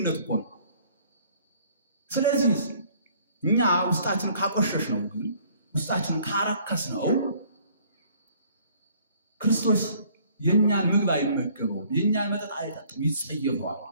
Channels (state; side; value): inverted; both; correlation -0.59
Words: እኮ ነው። ስለዚህ እኛ ውስጣችን ካቆሸሽ ነው ግን ውስጣችን ካረከስ ነው ክርስቶስ የኛን ምግብ አይመገበው፣ የኛን መጠጥ አይጠጣም፣ ይጸየፈዋል።